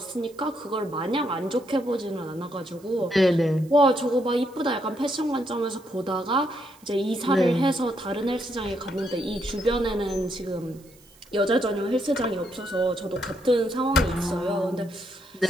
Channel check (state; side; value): noise; right; hiss, 27 dB below the sound